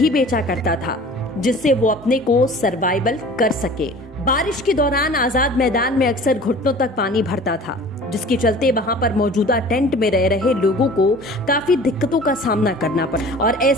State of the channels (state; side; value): normal; both; correlation 0.44